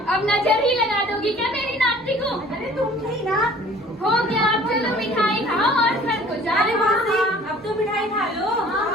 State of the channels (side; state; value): both; normal; correlation 0.50